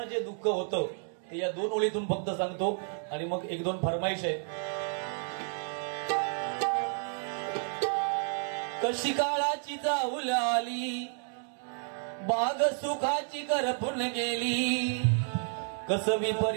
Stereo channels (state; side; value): silent; left; 57 dB below the other